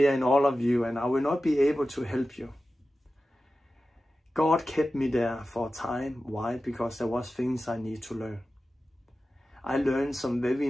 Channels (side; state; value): both; normal; correlation 0.94